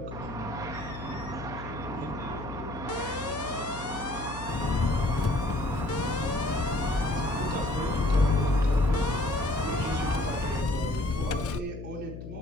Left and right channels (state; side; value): noise; left; hum, 10 dB below the sound